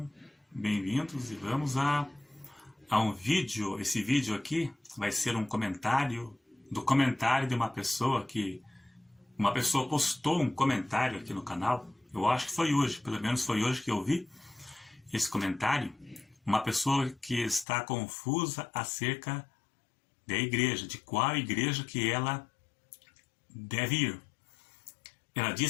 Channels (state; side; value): drops out; right; at 17.7 s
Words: bem-vindos e vamos a um vídeo. Esse vídeo aqui vai ser um comentário do comentário de uma pessoa postou um comentário aqui no canal. Eu acho que foi hoje, pelo menos foi hoje que eu vi esse comentário. Uma pessoa que está confusa acerca da igreja, de qual igreja que ela deve ir. Ela